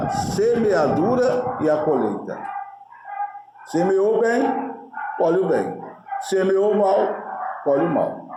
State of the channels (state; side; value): identical; both; correlation 1.00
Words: semeadura e a colheita. Semeou bem, colhe o bem. Semeou mal, colhe o mal.